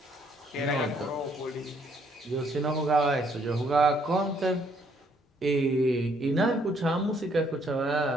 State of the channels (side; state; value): both; normal; correlation 0.68